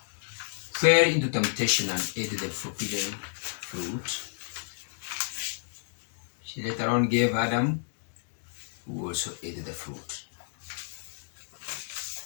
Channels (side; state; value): right; silent; digital silence